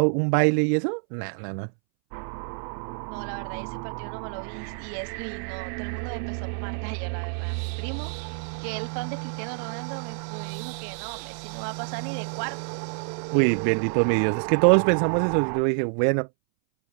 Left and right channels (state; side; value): silent; left; 60 dB below the other